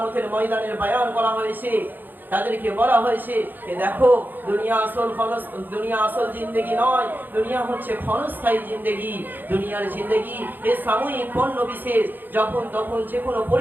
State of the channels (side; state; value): left; late; 0.089 ms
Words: ময়দানের বয়ান করা হয়েছে। তাদেরকে বলা হয়েছে যে দেখো, দুনিয়া আসল জিন্দেগি নয়, দুনিয়া হচ্ছে ক্ষণস্থায়ী জিন্দেগি। দুনিয়ার জিন্দেগি এ সাময়িক পণ্য বিশেষ, যখন তখন যে কোনো